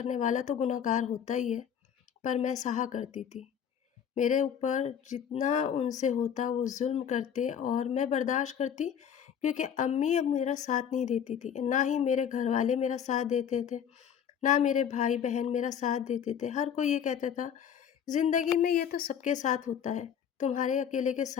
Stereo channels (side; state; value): right; quieter; 8.4 dB